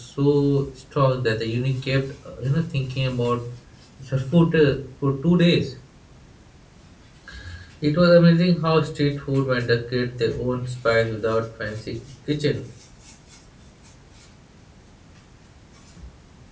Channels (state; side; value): identical; both; correlation 1.00